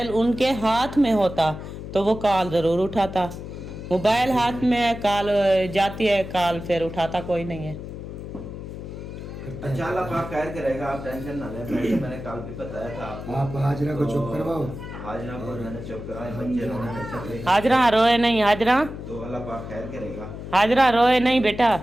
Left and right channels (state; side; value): noise; left; hum, 10 dB below the sound